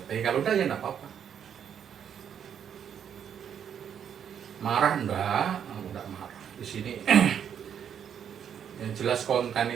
kalau udah ya enggak apa-apa. Marah enggak marah di sini. Yang jelas konten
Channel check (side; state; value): left; quieter; 8.5 dB